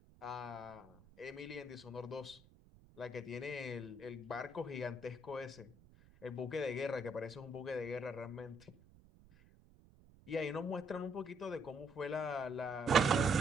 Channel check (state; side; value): noise; right; rumble, 24 dB below the sound